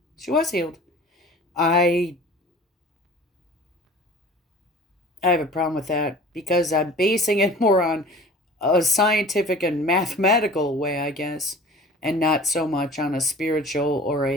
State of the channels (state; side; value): normal; both; correlation 0.43